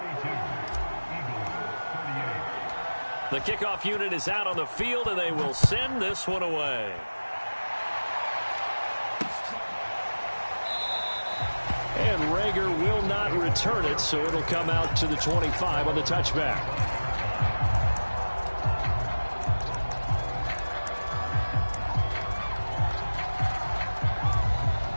The kickoff unit is out on the field, and they will send this one away. And Rager will not return it, so it'll come out to the 25 on the touchback.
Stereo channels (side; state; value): both; inverted; correlation -1.00